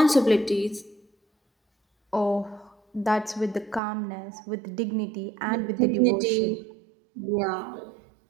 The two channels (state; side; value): drops out; left; at 3.8 s